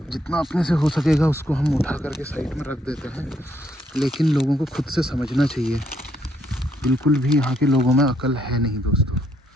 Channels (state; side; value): normal; both; correlation 0.72